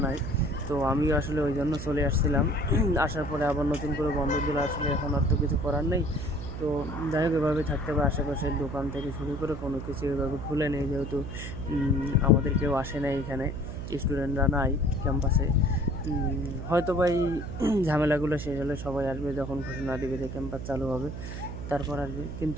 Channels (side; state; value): right; noise; hum, 7 dB below the sound